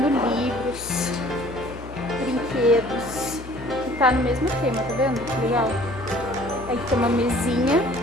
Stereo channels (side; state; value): left; noise; hum, 14 dB below the sound